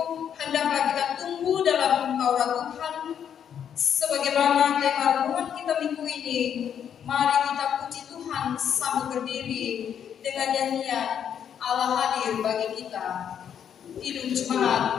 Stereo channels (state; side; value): quieter; right; 8.7 dB